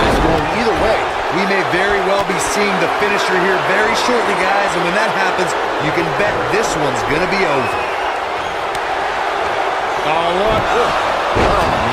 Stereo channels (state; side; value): identical; both; correlation 1.00